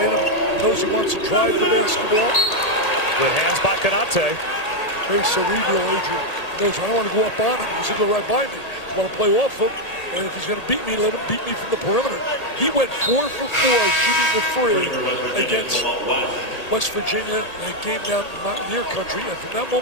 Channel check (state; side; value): late; right; 1.8 ms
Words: him. Knows he wants to drive the basketball. Good hands by Konate. Very cerebral, Adrian. He knows I don't want to go up on him. He's going to go right by me. I want to play off him. And if he's going to beat me, let him beat me from the perimeter. He went 4 for 4 shooting the free against West Virginia in a game down in Mountaineer country. And from that